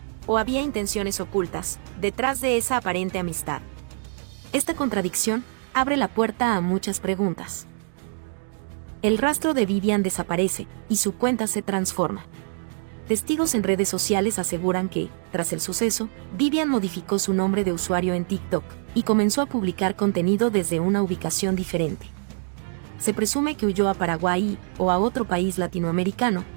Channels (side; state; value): left; silent; 62 dB below the other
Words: ¿O había intenciones ocultas detrás de esa aparente amistad? Esta contradicción abre la puerta a muchas preguntas. El rastro de Vivian desaparece y su cuenta se transforma. Testigos en redes sociales aseguran que, tras el suceso, Vivian modificó su nombre de usuario en TikTok y comenzó a publicar contenido desde una ubicación diferente. Se presume que huyó a Paraguay o a otro país latinoamericano,